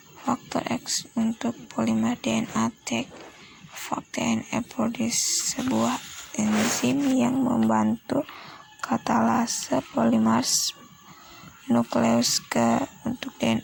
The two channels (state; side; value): identical; both; correlation 1.00